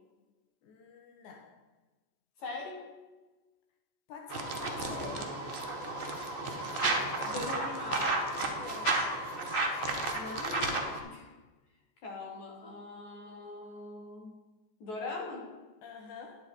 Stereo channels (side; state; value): right; late; 14 ms